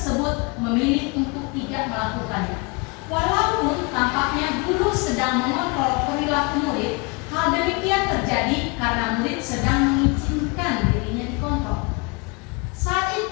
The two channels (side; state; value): right; quieter; 29.6 dB